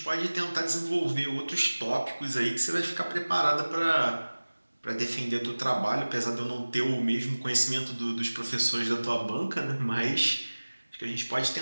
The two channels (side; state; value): both; inverted; correlation -1.00